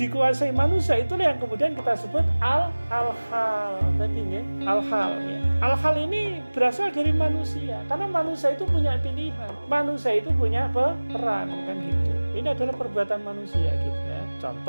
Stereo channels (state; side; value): inverted; both; correlation -1.00